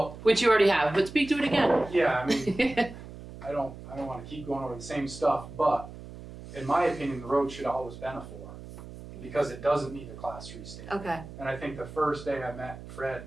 which you already have, but speak to it again. yeah, I mean, I don't wanna keep going over the same stuff, but in my opinion, the road should have always been a 4. Because it doesn't need a class 3 stamp. Okay. And I think the first day I met Fred,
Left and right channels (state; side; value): noise; right; hum, 14 dB below the sound